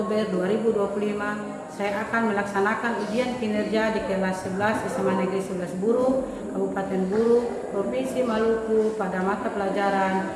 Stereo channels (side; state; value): both; identical; correlation 1.00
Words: 2025 saya akan melaksanakan ujian kinerja di kelas 11 SMA Negeri 11 Buru, Kabupaten Buru, Provinsi Maluku pada mata pelajaran